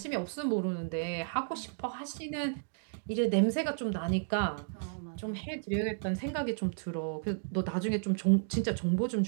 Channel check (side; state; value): left; silent; digital silence